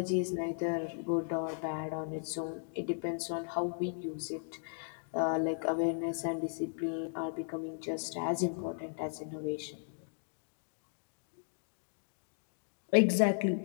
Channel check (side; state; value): right; silent; digital silence